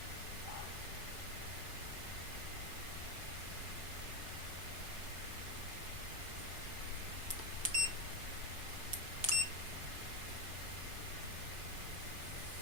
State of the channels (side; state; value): left; late; 5.2 ms